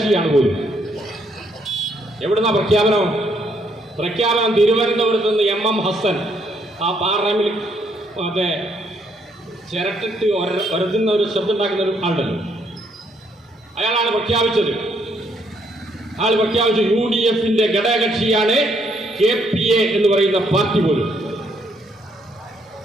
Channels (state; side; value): normal; both; correlation 0.71